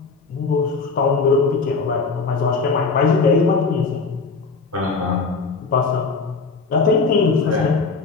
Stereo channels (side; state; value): right; quieter; 4.4 dB